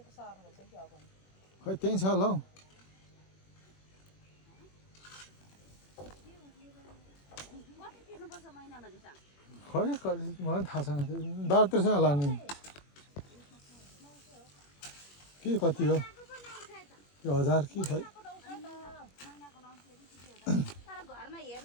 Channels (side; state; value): right; late; 21 ms